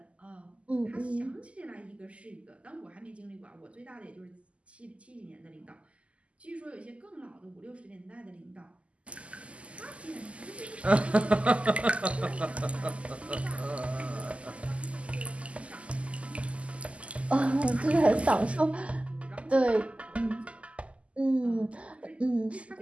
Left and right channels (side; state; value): left; late; 0.060 ms